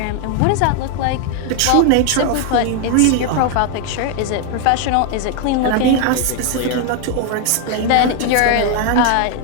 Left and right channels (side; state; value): both; different; correlation 0.00